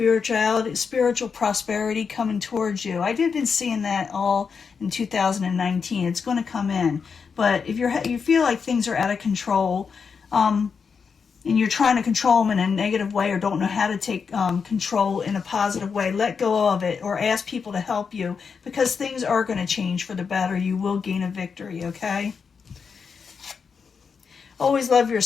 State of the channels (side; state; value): right; quieter; 5.8 dB